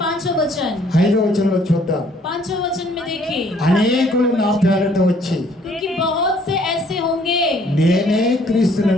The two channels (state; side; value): normal; both; correlation 0.62